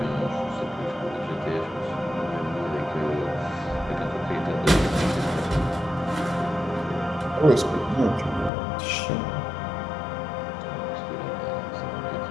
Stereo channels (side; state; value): right; drops out; at 8.5 s